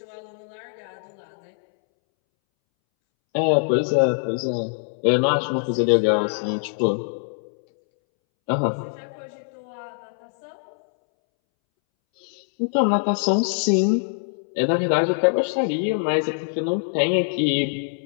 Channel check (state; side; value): silent; right; 63 dB below the other